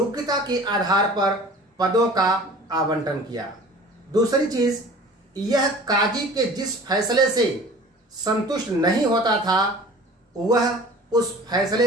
के आधार पर पदों का आवंटन किया। दूसरी चीज, यह काजी के जिस फैसले से संतुष्ट नहीं होता था वह उस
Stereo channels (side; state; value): both; normal; correlation 0.44